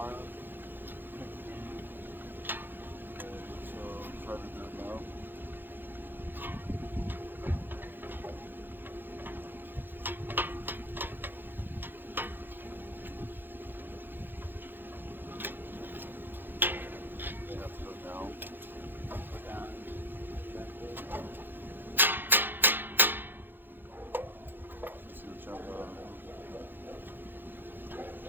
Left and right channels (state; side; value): late; left; 0.096 ms